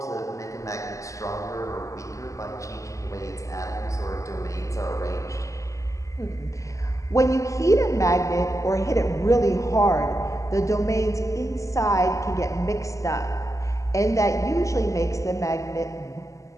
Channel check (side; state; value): right; late; 0.16 ms